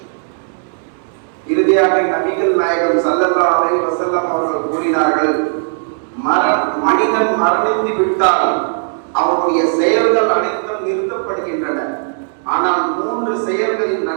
இறுதியாக நபிகள் நாயகம் ஸல்லல்லாஹு அலைஹி வஸல்லம் அவர்கள் கூறினார்கள், மனிதன் மரணித்து விட்டால் அவனுடைய செயல்கள் அனைத்தும் நிறுத்தப்படுகின்றன. ஆனால் 3 செயல்களின்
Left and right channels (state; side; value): silent; left; digital silence